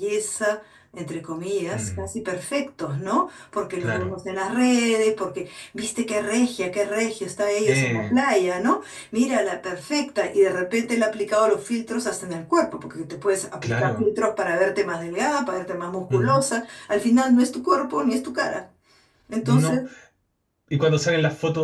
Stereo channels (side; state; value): both; identical; correlation 1.00